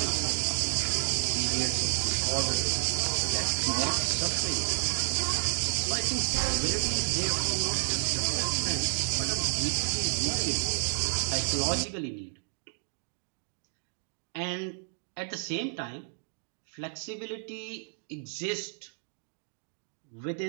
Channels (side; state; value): left; silent; digital silence